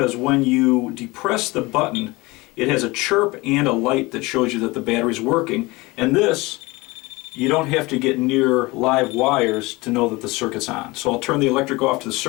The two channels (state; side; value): quieter; right; 22.6 dB